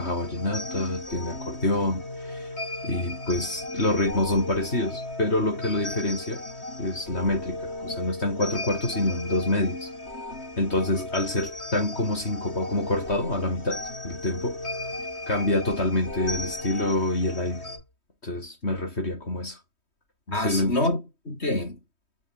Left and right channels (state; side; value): late; right; 3.2 ms